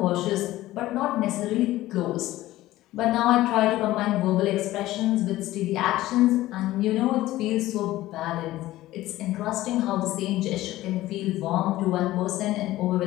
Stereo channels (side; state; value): right; quieter; 16.1 dB